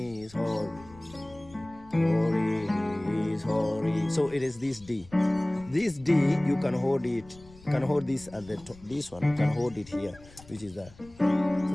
holy, holy is holy. So it is this D. This D, you can hold it. You can hold this at the top. This one, you can hold it here, which is that. So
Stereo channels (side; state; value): left; noise; rumble, 23 dB below the sound